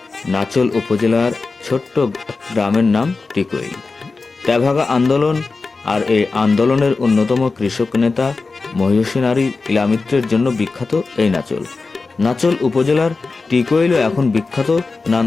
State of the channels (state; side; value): quieter; right; 4.0 dB